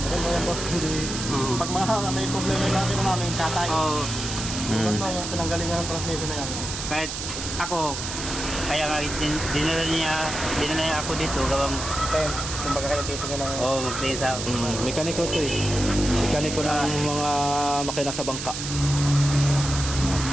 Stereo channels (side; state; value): right; noise; hiss, 6 dB below the sound